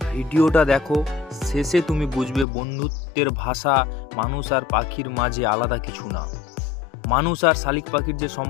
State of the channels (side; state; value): right; drops out; at 2.5 s